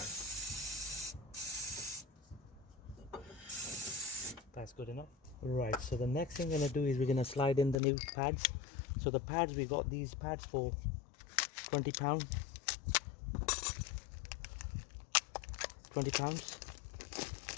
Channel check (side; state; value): right; drops out; at 7.8 s